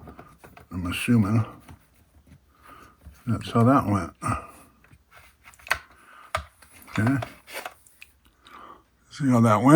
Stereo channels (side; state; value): both; identical; correlation 1.00